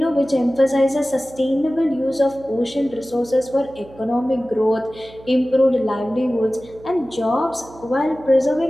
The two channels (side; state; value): right; noise; hum, 21 dB below the sound